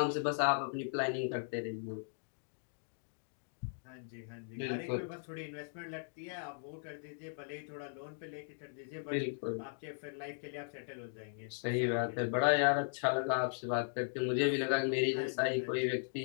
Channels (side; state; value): right; silent; digital silence